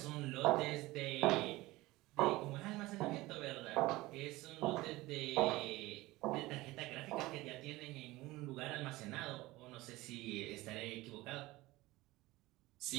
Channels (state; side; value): quieter; left; 19.4 dB